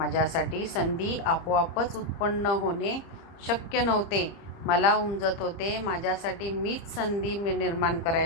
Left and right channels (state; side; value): late; right; 30 ms